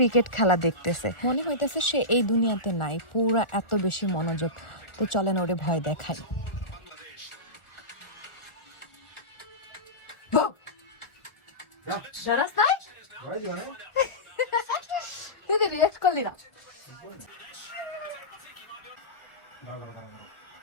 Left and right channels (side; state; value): right; late; 1.4 ms